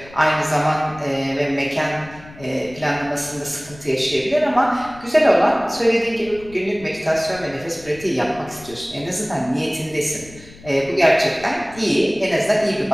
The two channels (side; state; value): left; noise; rumble, 21 dB below the sound